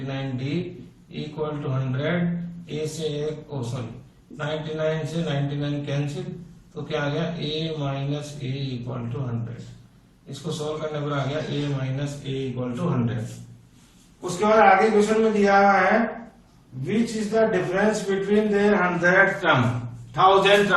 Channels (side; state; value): both; identical; correlation 1.00